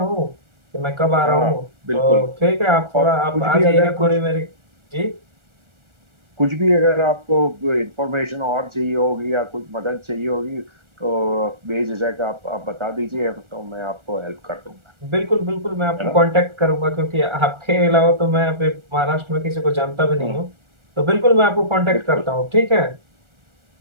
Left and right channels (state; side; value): late; left; 1.4 ms